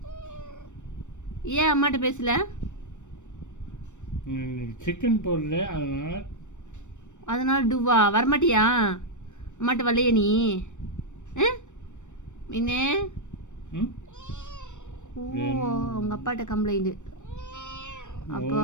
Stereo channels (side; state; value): right; late; 0.84 ms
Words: ஏன் அம்மாட்ட பேசல? சிக்கன் போடல, அதனால டூவா வரமாட்டியா? அம்மாட்ட வரலையே நீ? மீனே, ஓ உங்க அப்பாட்ட கம்ப்ளைண்ட். அப்போ